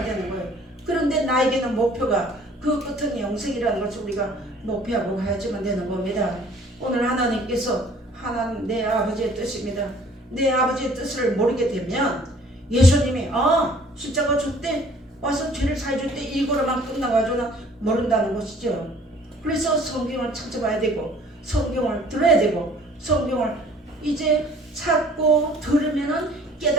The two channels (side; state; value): both; normal; correlation 0.54